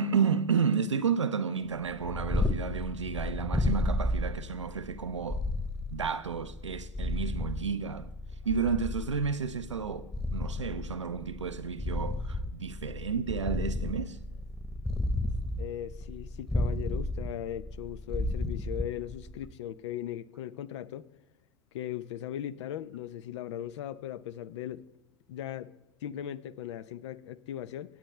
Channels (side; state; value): both; normal; correlation 0.12